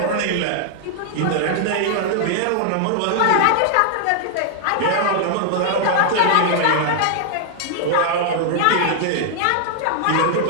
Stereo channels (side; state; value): both; different; correlation 0.00